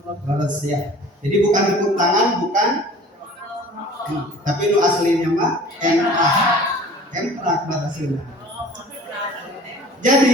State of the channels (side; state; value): both; normal; correlation 0.46